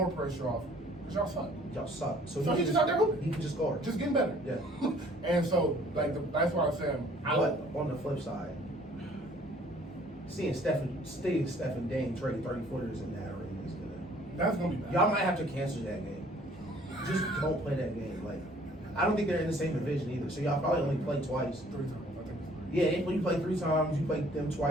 pressure off because y'all suck. Y'all suck. So he's just out there hooping. He can just score. Just getting better. Yeah. And so, that's why I'm saying. But on the flip side, seeing Steph and Dame trade 30-footers in that arena is gonna. That's gonna be bad. Y'all might have to cancel that game. Just don't play that game. Like, I don't think they're in the same division either. So y'all probably only play twice. 3 times, I think. Yeah, when you play 3 times, you play them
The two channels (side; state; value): both; normal; correlation 0.57